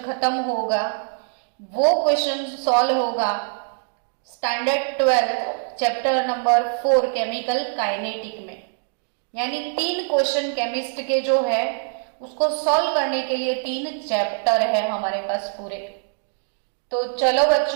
खत्म होगा, वो क्वेश्चन सॉल्व होगा standard 12 chapter number 4 chemical kinetic में। यानी 3 क्वेश्चन केमिस्ट के जो है उसको सॉल्व करने के लिए 3 चैप्टर है हमारे पास पूरे। तो चलो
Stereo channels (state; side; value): silent; left; 63 dB below the other